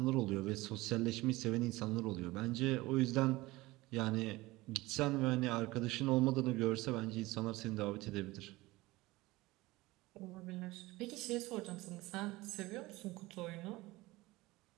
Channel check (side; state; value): left; quieter; 20.1 dB